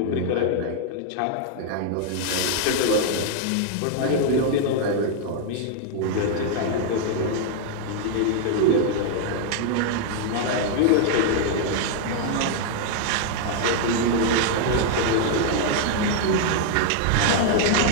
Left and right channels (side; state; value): both; different; correlation -0.01